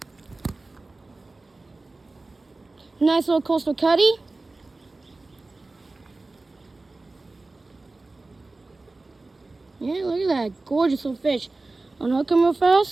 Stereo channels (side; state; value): left; quieter; 3.3 dB